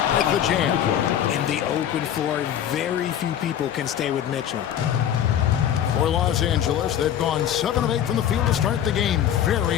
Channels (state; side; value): quieter; right; 10.1 dB